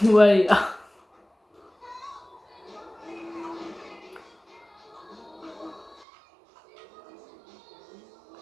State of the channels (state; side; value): drops out; left; at 6.1 s